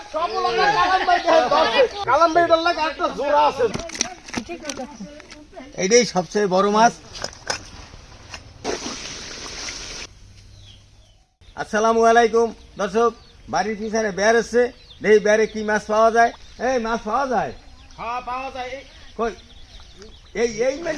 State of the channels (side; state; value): both; identical; correlation 1.00